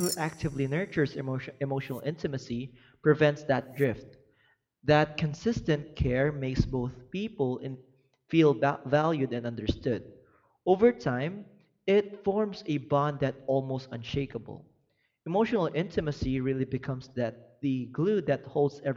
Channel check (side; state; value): both; identical; correlation 1.00